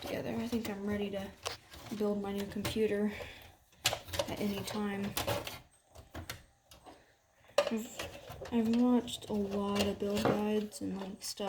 together. I think I'm ready to build my new computer at any time. I've watched a lot of build guides and like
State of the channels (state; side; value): identical; both; correlation 1.00